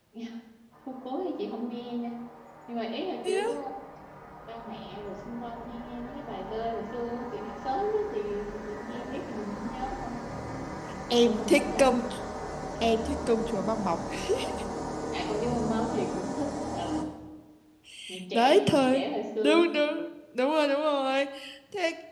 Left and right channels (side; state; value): both; identical; correlation 1.00